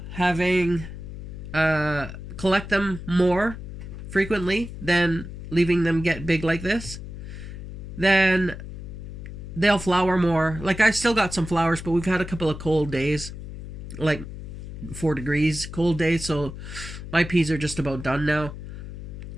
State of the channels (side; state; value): left; noise; hum, 10 dB below the sound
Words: having collect them more frequently than leaving them get big like this, then they'll flower more. Like, I still got some flowers, but we've had a couple of cold days, like 4 degrees cold days, so my peas are just about done now.